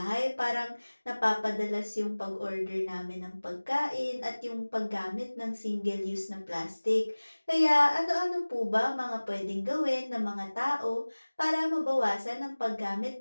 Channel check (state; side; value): inverted; both; correlation -1.00